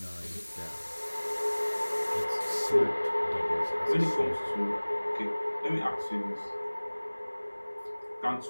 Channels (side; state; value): both; inverted; correlation -1.00